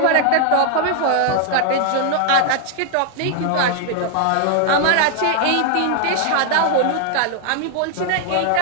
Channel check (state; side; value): different; both; correlation 0.00